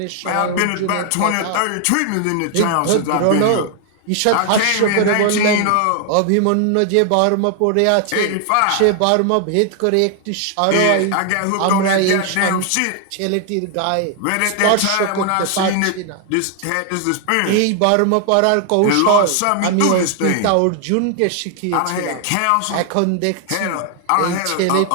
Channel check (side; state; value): both; different; correlation 0.00